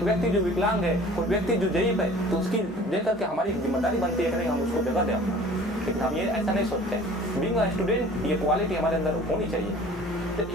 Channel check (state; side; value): normal; both; correlation 0.47